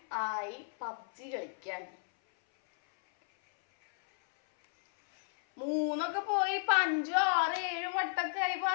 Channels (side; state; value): right; silent; 56 dB below the other